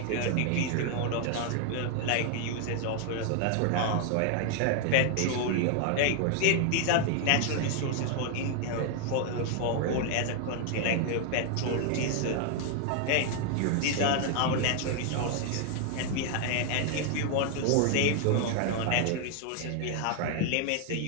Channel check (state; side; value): different; both; correlation 0.00